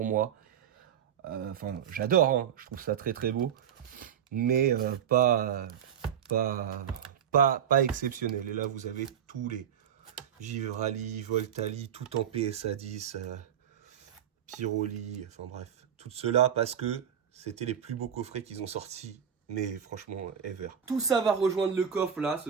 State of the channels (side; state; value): left; quieter; 8.7 dB